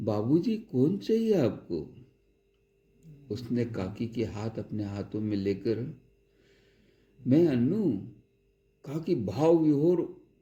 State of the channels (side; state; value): both; identical; correlation 1.00